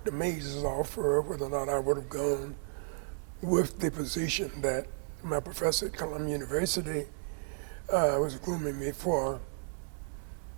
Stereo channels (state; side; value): silent; left; 56 dB below the other